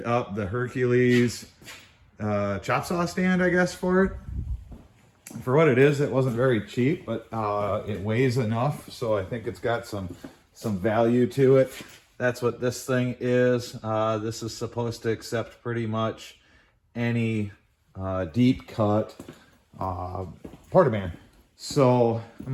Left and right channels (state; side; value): identical; both; correlation 1.00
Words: up the Hercules chop saw stand, I guess, for it. For what it is, it wasn't very cheap, but it weighs enough, so I think it's got some value to it. That's what this thing is. This is supposed to accept pretty much any deep cut portaband. So I'm